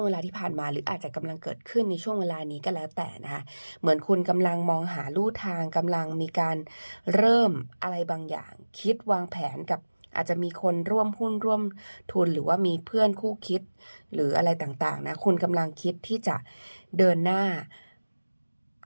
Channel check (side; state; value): both; inverted; correlation -1.00